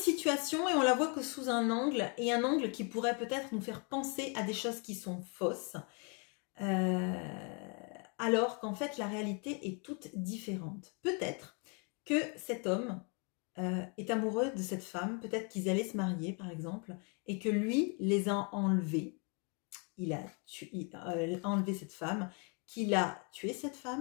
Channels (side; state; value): right; quieter; 36.3 dB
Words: et on la voit que sous un angle, et un angle qui pourrait peut-être nous faire penser à des choses qui sont fausses. Alors qu'en fait la réalité est toute différente. Peut-être que cet homme est amoureux de cette femme, peut-être qu'ils allaient se marier par exemple, et que lui les a enlevés, il a enlevé cette femme, qu'il a tué cette